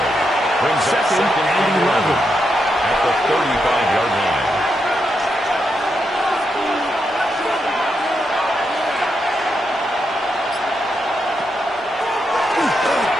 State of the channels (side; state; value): both; normal; correlation 0.83